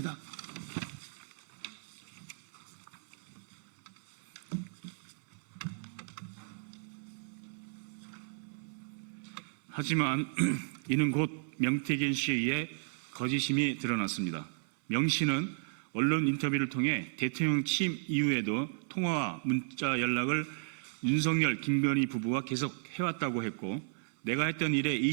하지만 이는 곧 명태균 씨에 의해 거짓임이 드러났습니다. 명 씨는 언론 인터뷰를 통해 대통령 취임 이후에도 통화와 문자 연락을 윤석열, 김건희 부부와 계속 해왔다고 했고, 내가 했던 일에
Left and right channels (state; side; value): silent; left; 55 dB below the other